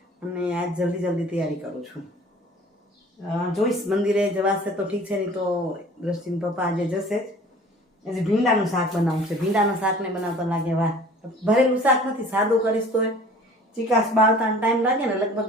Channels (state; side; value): normal; both; correlation 0.47